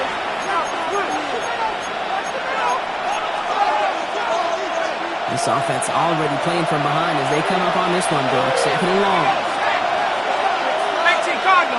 This offense already playing from behind as they come up on this one, Brock. Second and long.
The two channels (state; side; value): identical; both; correlation 1.00